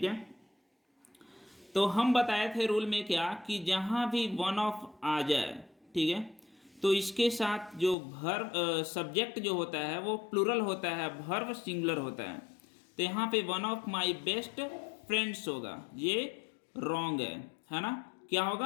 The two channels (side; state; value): right; drops out; at 8.0 s